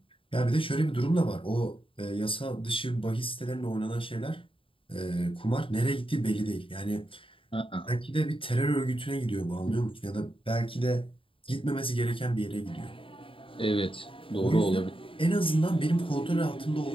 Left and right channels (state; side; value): late; right; 0.26 ms